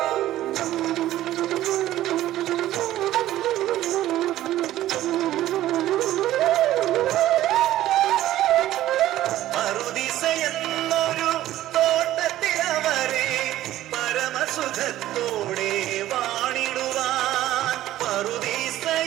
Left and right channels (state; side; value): quieter; left; 14.1 dB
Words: സുഖത്തോടെ വാണിടുവാൻ പറുദീസ